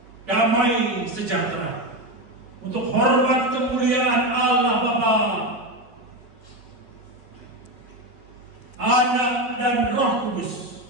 damai sejahtera untuk hormat kemuliaan Allah Bapa, Anak dan Roh Kudus.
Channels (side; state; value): left; late; 5.9 ms